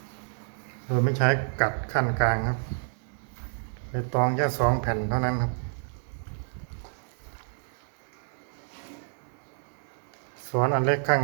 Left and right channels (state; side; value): silent; left; 59 dB below the other